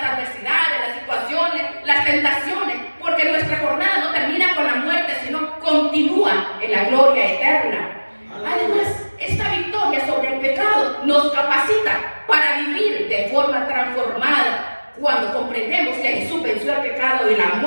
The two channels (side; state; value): both; inverted; correlation -1.00